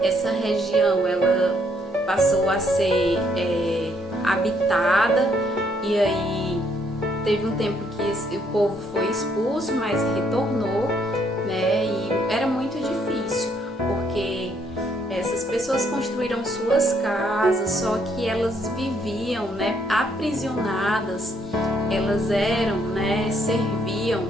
Essa região ela passou a ser habitada e aí teve um tempo que o povo foi expulso, mas retornou, né? E era muito difícil porque essas pessoas construíram suas casas, só que elas viviam, né, aprisionadas, elas eram, né, serviam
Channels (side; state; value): both; normal; correlation 0.70